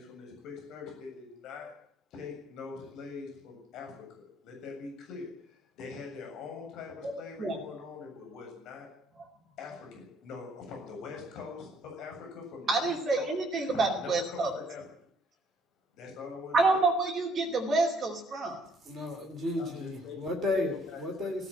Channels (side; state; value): both; normal; correlation 0.64